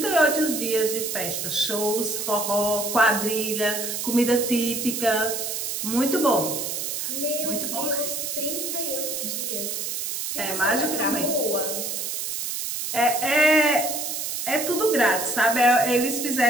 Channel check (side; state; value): right; noise; hiss, 3 dB below the sound